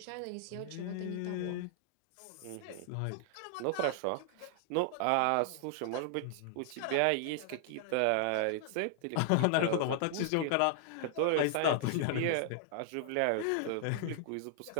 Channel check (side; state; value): both; different; correlation -0.01